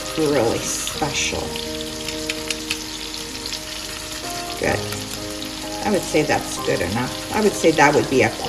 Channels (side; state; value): both; identical; correlation 1.00